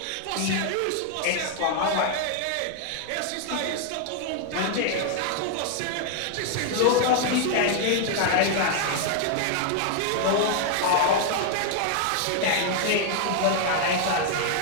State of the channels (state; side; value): different; both; correlation 0.00